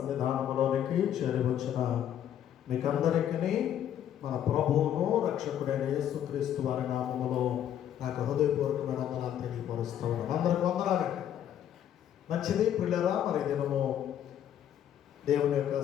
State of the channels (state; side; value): quieter; right; 10.3 dB